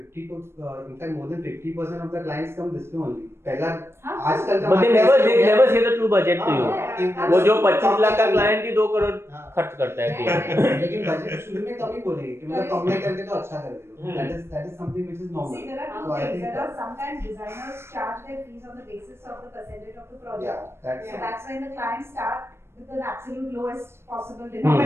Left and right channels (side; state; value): left; late; 0.12 ms